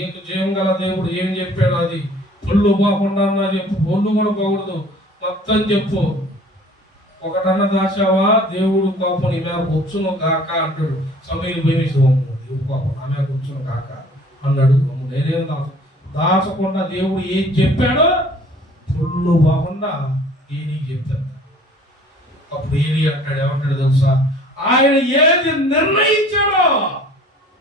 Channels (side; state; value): both; normal; correlation 0.51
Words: జీవం గల దేవుడు ఏం చెప్పాడు అది పొల్లు పోకుండా చెప్పు, పొల్లు కూడా పోకూడదు, మొత్తం చెప్పు. ఒకటన్నా దాచావా దేవుడు కోపం నీ మీద వచ్చును కాక అంటాడు. సమూయేలు భయమేసి, దేవుడు కోపం నా మీద వచ్చును కాక అన్నాడు. నేనేం దాచకుండా దేవుడు ఏం చెప్పాడో పొల్లు పోకుండా ఏలికి చెప్తాడు. అప్పుడు ఏలి అంటాడు, ఏమంటాడు తెలుసా, ఆయన ఏది నిర్ణయించాడో